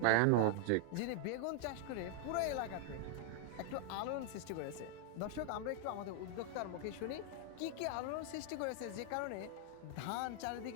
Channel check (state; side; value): different; both; correlation 0.00